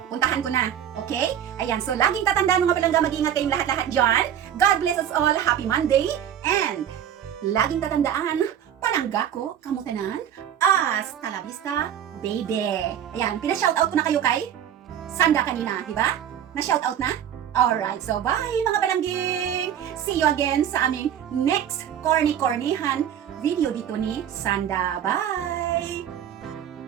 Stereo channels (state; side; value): quieter; left; 9.8 dB